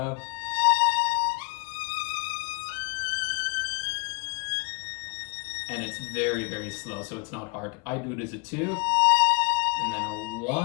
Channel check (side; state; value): right; quieter; 28.0 dB